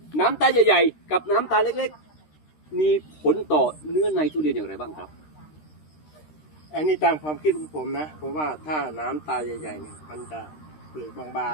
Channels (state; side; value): late; right; 13 ms